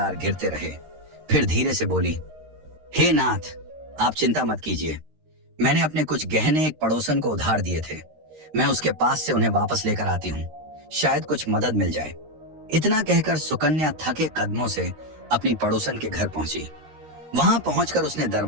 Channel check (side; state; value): left; late; 13 ms